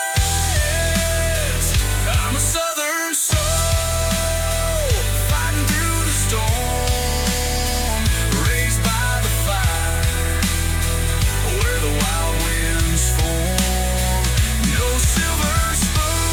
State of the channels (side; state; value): both; identical; correlation 1.00